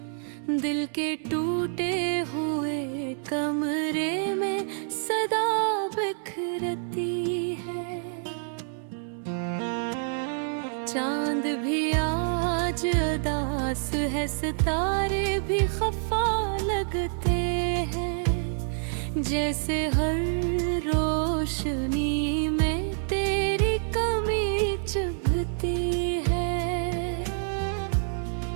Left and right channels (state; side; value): silent; left; 60 dB below the other